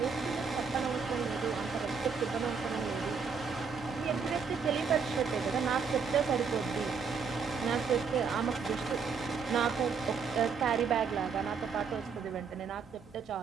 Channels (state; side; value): quieter; left; 5.7 dB